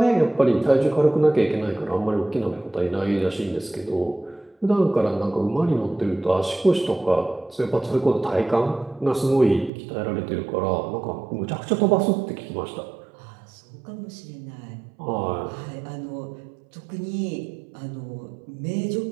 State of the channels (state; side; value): drops out; left; at 9.7 s